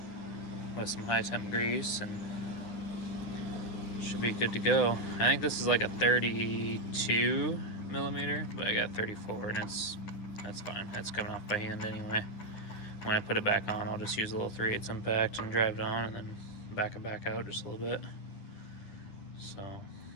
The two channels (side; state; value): right; late; 10 ms